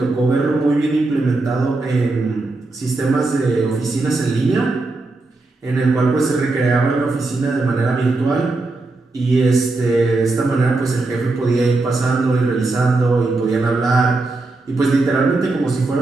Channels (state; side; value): quieter; left; 3.3 dB